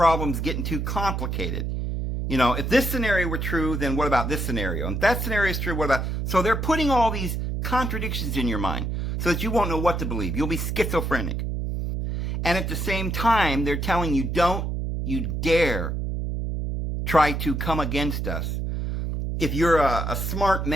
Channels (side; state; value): right; noise; hum, 2 dB below the sound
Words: getting too complicated. If this scenario were true, then what about this scenario? And if that scenario is true, what about... So they're putting all these contradictions in your mind so that you won't know what to believe. You'll be schizophrenic. And at the same time, they're telling you, don't you dare try to come against us. If you're a smart